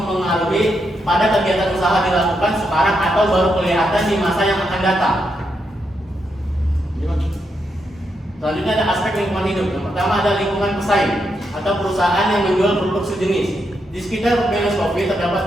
pada kegiatan usaha dilakukan sekarang atau baru kelihatan di masa yang akan datang. Selanjutnya ada aspek lingkungan hidup. Yang pertama ada lingkungan pesaing atau perusahaan yang menjual produk sejenis. Di sekitar Venus Coffee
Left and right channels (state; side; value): normal; both; correlation 0.82